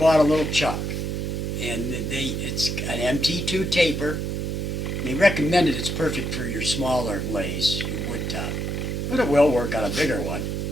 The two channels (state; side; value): noise; right; hum, 2 dB below the sound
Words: a little chuck, and it's an MT2 taper. They recommended it's perfect for your smaller lays, your wood top, but it will work on a bigger one.